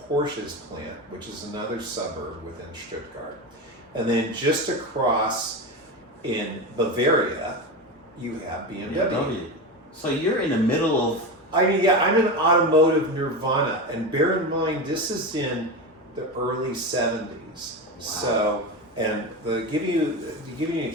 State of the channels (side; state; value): both; normal; correlation 0.21